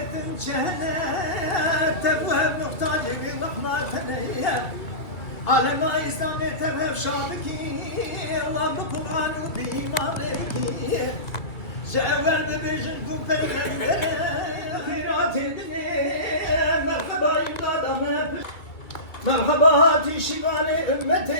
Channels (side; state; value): right; late; 2.3 ms